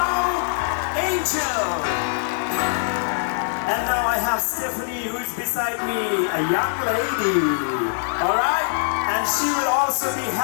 Angel. And now I have Stephanie, who is beside me, a young lady. All right, and she will also be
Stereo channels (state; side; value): silent; right; digital silence